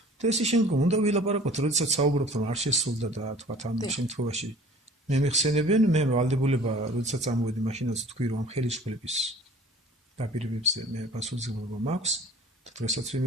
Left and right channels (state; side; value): normal; both; correlation 0.47